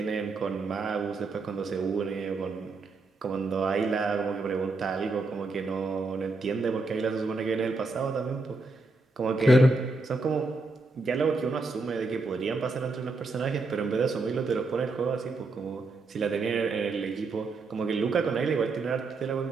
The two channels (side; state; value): left; quieter; 3.5 dB